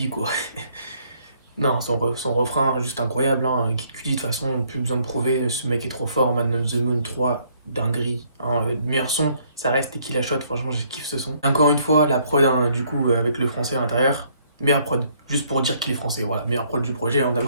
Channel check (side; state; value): both; inverted; correlation -0.66